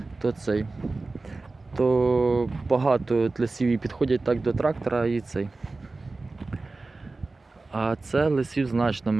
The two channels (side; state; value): left; quieter; 3.5 dB